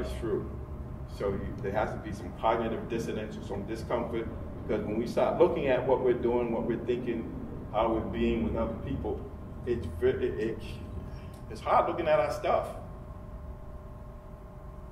through. So there has to be some cognitive dissonance or some discomfort, because when we start looking at what we're doing, what we're thinking, how we're being with other people, it's hard looking at our stuff.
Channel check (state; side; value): identical; both; correlation 1.00